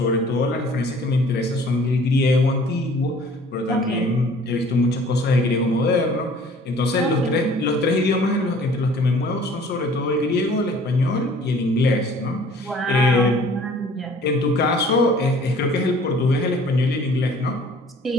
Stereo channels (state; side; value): normal; both; correlation 0.52